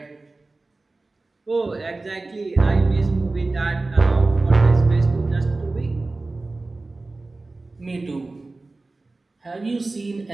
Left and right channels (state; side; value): quieter; left; 3.3 dB